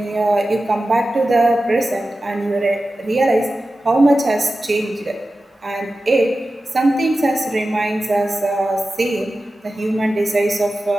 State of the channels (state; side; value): normal; both; correlation 0.94